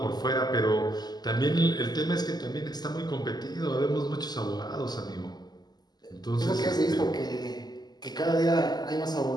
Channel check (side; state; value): right; late; 0.20 ms